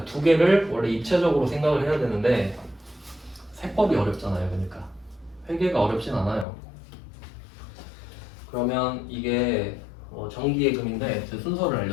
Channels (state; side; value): drops out; right; at 6.5 s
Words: 두 개를 원래 입체적으로 생각을 해야 되는데 세법이 어렵잖아요. 그러니까 회계가 어렵진 않아요. 그러면 이게 정기예금인데 제 순서를